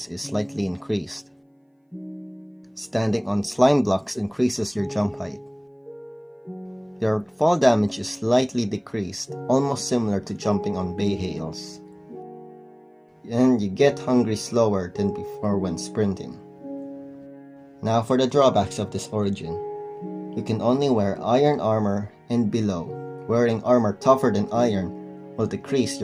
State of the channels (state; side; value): identical; both; correlation 1.00